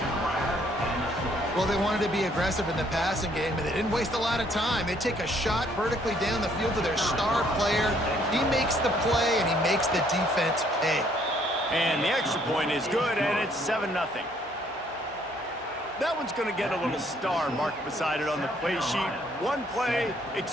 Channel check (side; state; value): both; normal; correlation 0.65